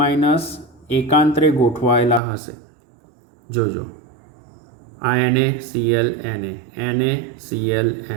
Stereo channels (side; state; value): left; drops out; at 2.2 s